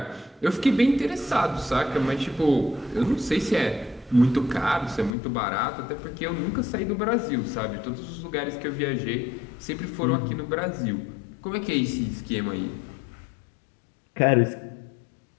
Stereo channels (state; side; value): drops out; right; at 5.2 s